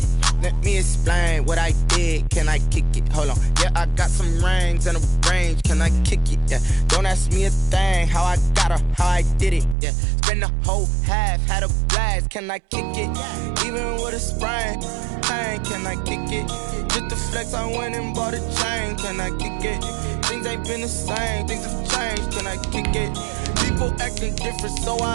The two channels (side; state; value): left; drops out; at 9.8 s